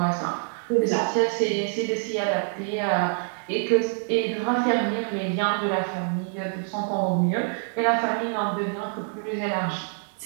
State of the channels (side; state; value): left; silent; 59 dB below the other